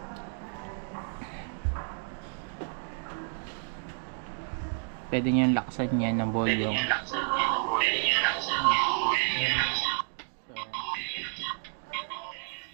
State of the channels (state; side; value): silent; left; 57 dB below the other